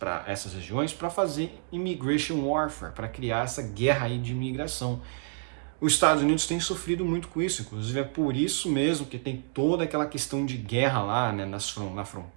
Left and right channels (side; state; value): left; silent; 59 dB below the other